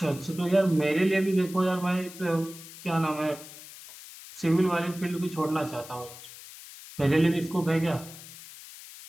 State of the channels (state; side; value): noise; left; hiss, 16 dB below the sound